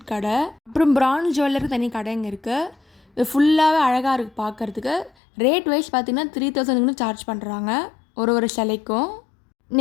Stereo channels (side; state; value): right; drops out; at 5.1 s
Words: கடை. அப்புறம் பிரான்ஸ் ஜுவல்லருக்கு தனி கடைங்க இருக்குது. இது ஃபுல்லாகவே அழகாக இருக்குது பார்க்குறதுக்கு. ரேட் வைஸ் பார்த்திங்கன்னா 3000 சார்ஜ் பண்ணுறாங்க ஒரு சிலைக்கும்.